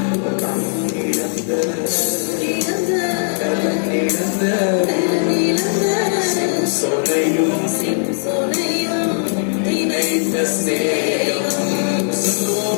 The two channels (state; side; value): silent; right; 67 dB below the other